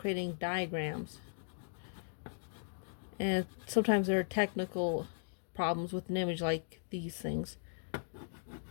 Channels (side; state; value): right; silent; digital silence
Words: diagrams. And sometimes there are technical problems with an image like these things.